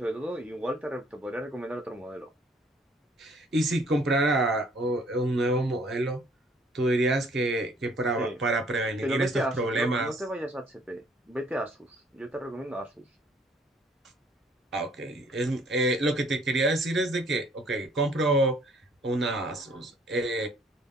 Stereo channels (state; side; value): normal; both; correlation 0.60